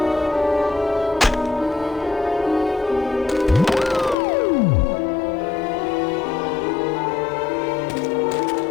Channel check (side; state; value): right; drops out; at 4.2 s